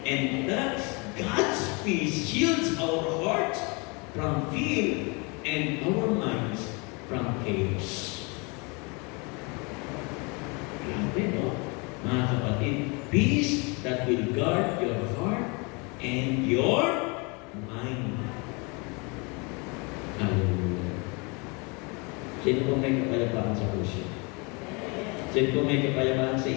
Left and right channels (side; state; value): right; quieter; 30.2 dB